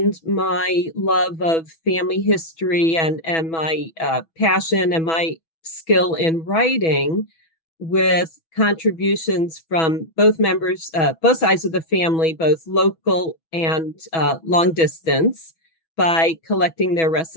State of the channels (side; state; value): right; late; 6.1 ms